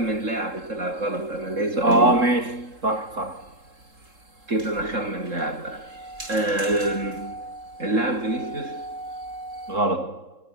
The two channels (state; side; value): late; left; 3.7 ms